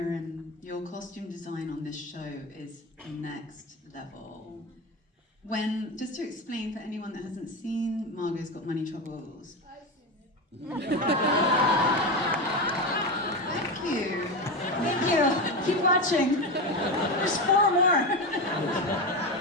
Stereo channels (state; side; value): normal; both; correlation 0.18